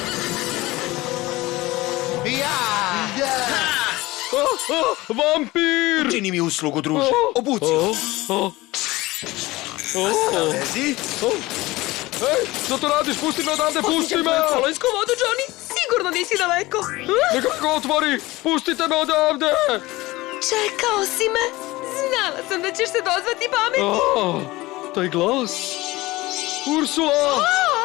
Vampir! Čini mi uslugu, druže. Obuci. Lezi. Ej, što to radiš? Pusti me odavde, pusti me! Kolonsku vodu, Johnny, sigurno nisi daleko. Neka ga otvori! Pustite me odavde! Čekao si me. Znala sam da ćeš se dozvati pameti. Taj glas! Ursula!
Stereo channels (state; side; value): quieter; right; 19.8 dB